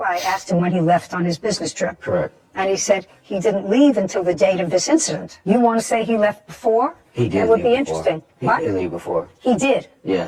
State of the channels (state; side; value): identical; both; correlation 1.00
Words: I asked him when he left on his business trip. Correct. And he said he didn't leave until the date of this incident. You want to say he left before? He did That would leave be before. interesting. He What? did leave before. He did.